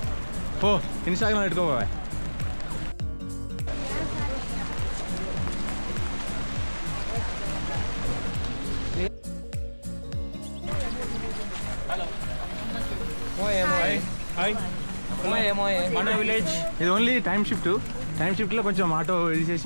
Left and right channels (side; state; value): both; inverted; correlation -1.00